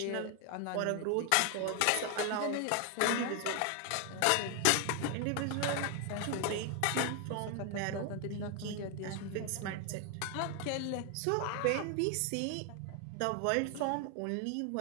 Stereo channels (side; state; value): both; different; correlation 0.00